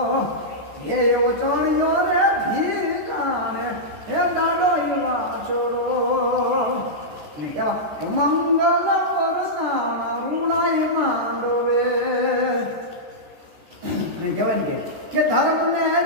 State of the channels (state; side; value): late; left; 14 ms